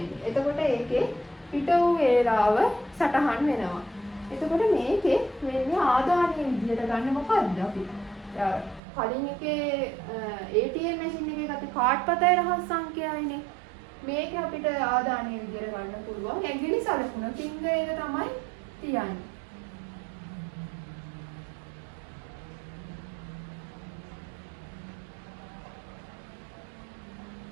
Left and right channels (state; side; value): drops out; left; at 8.8 s